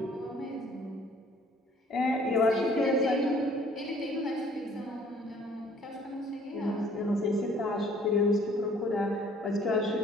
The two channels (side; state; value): both; normal; correlation 0.57